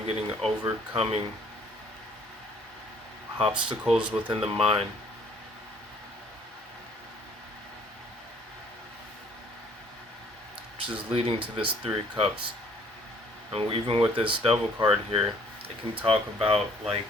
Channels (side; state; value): both; normal; correlation 0.59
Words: getting overcoming obstacles within the mind. Which is leading to this Three of Cups. And even with this Devil card here, it can talk about like